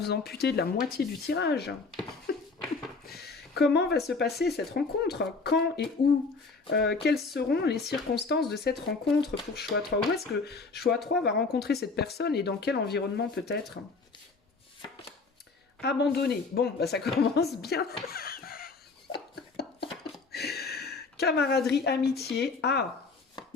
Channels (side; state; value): right; quieter; 4.2 dB